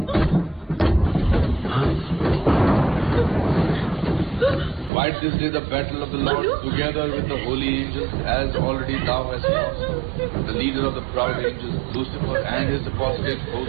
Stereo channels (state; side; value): drops out; left; at 4.9 s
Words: Fight this day the battle of the Lord together with the holy angels, as already thou hast lost the leader of the proud angels, Lucifer, and his apostate